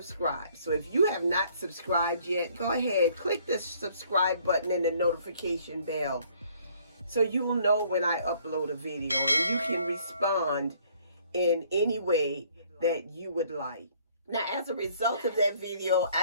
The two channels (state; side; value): inverted; both; correlation -0.61